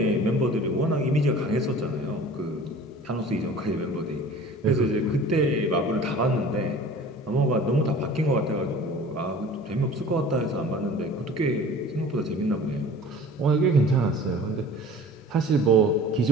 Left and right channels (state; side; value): normal; both; correlation 0.43